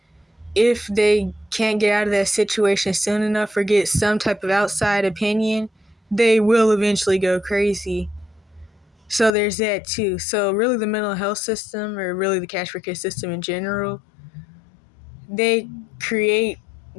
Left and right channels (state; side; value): drops out; right; at 9.3 s